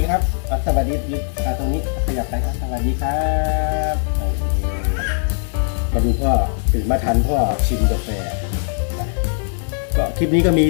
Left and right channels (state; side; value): silent; right; 57 dB below the other